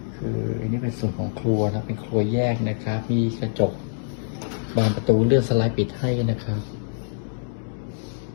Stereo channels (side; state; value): right; silent; digital silence